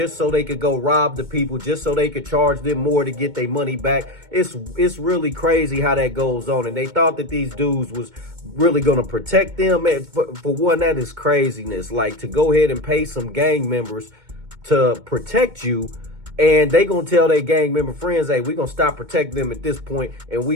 so they could go rob the people, just so they could charge them more to get their money back. It's really crazy how that goes on. And they thought that these dudes was really going to protect them. And for one, that is craziness. Like, to go ahead and pay some gang members to protect you, and they gonna tell their gang member friends, hey, we gonna stop protecting them at this point, and we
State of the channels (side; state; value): left; late; 2.2 ms